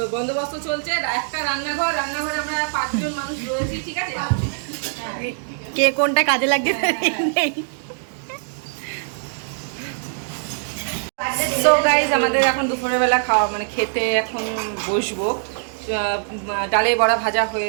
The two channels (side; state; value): left; silent; digital silence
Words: বন্দোবস্ত চলছে। একটা রান্নাঘরে আমরা 5 জন মানুষ রয়েছি, ঠিক আছে। কে কোনটা কাজে লাগছে নেই। সো গাইজ আমাদের এখন দুপুরের বেলা খাওয়া মানে খেতে এখন বসবো। ডালের বড়া ভাজা